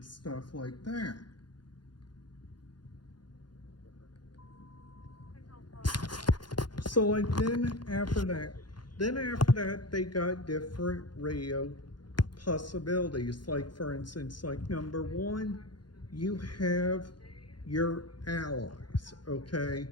stuff like that. So, like, then after that, they got different radio possibilities. Like, for instance, like, number one, you have your allies, okay?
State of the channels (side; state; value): right; late; 0.71 ms